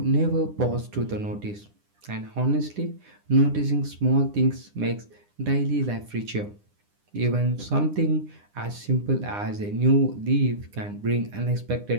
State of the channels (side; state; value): left; late; 9.9 ms